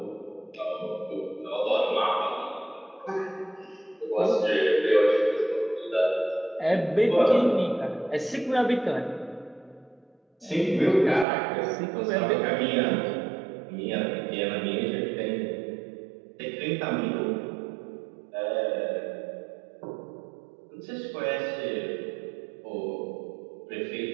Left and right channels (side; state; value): left; drops out; at 11.2 s